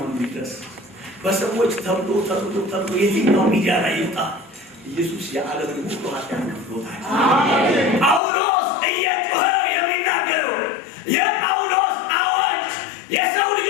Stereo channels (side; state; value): right; drops out; at 8.2 s